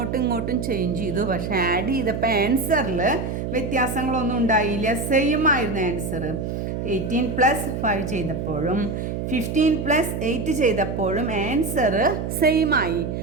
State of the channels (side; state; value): right; noise; hum, 4 dB below the sound